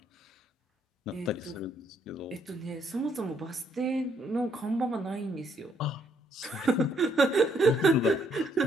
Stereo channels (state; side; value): normal; both; correlation 0.70